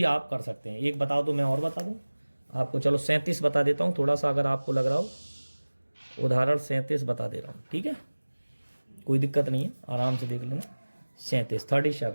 आप कर सकते हैं। एक बताओ तो मैं और बता दूं आपको। चलो 37 बता देता हूँ, थोड़ा सा अगर आपको लग रहा हो। उदाहरण 37 बता दे रहा हूँ, ठीक है, कोई दिक्कत नहीं है, आराम से देख लेना।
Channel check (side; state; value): both; inverted; correlation -1.00